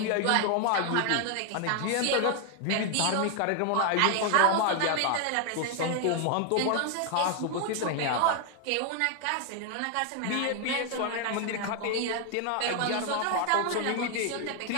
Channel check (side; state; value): both; different; correlation 0.00